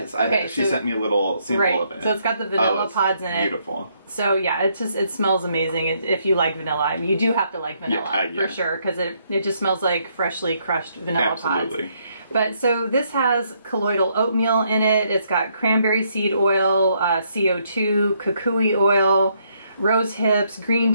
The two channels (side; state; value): both; inverted; correlation -0.73